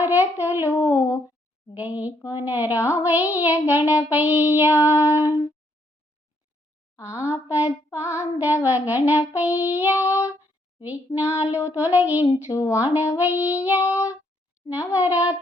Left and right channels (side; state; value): both; normal; correlation 0.72